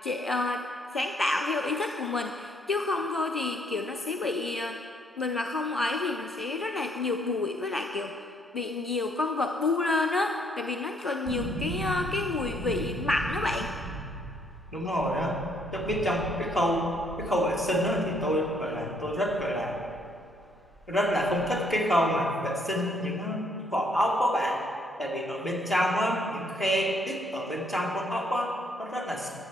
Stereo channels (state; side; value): normal; both; correlation 0.68